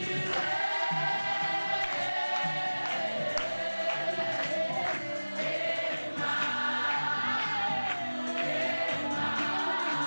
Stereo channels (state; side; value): inverted; both; correlation -1.00